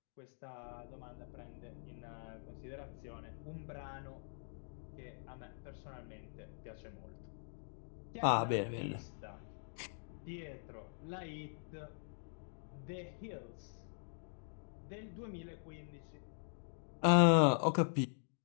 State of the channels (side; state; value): right; silent; digital silence